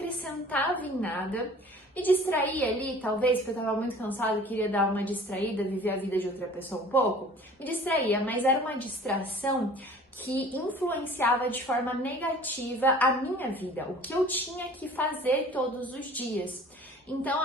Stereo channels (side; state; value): both; normal; correlation 0.47